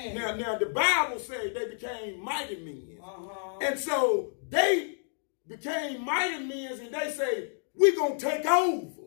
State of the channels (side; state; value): right; silent; digital silence